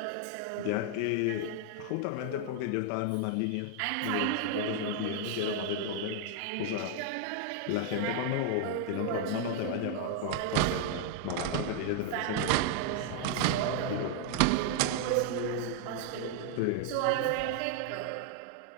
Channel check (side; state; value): both; different; correlation 0.00